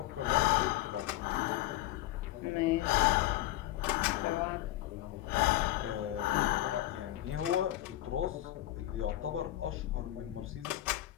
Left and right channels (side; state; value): right; quieter; 15.1 dB